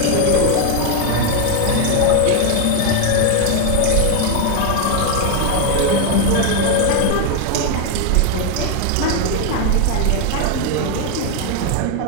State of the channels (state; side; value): different; both; correlation 0.01